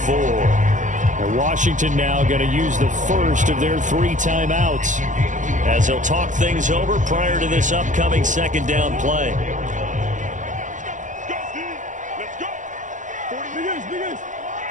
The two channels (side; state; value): left; late; 0.37 ms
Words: And Washington now going to use the first of their 3 timeouts as they'll talk things over prior to this upcoming second down play.